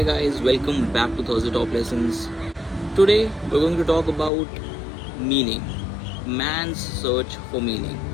guys, welcome back to Thursday Top Lessons. Today we're going to talk about meaning, man's search for meaning.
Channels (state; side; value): drops out; right; at 4.3 s